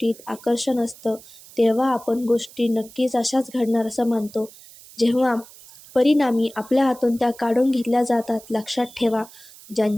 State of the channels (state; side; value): noise; right; hiss, 21 dB below the sound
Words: आकर्षण असतं तेव्हा आपण गोष्टी नक्कीच अशाच घडणार असं मानतो. जेव्हा परिणामी आपल्या हातून त्या काढून घेतल्या जातात. लक्षात ठेवा,